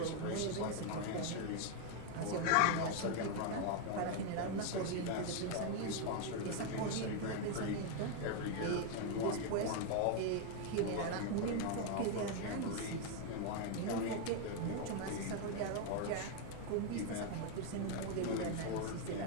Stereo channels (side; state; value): both; different; correlation 0.00